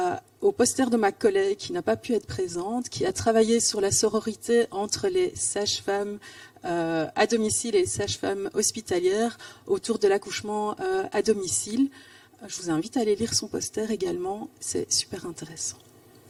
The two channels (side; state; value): both; identical; correlation 1.00